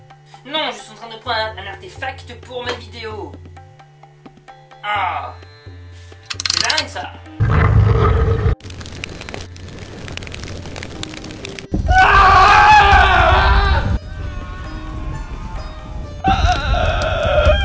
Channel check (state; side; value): identical; both; correlation 1.00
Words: Non, je suis en train de prendre un artefact pour ma vidéo. Ah, c'est dingue ça.